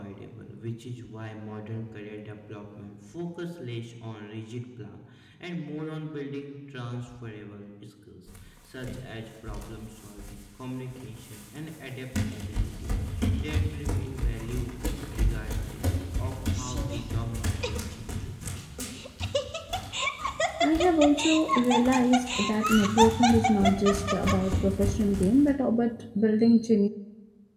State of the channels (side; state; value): both; identical; correlation 1.00